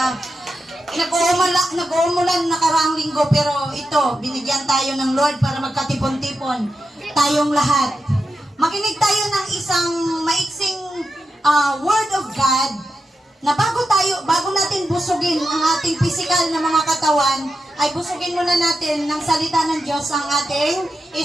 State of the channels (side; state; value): both; normal; correlation 0.88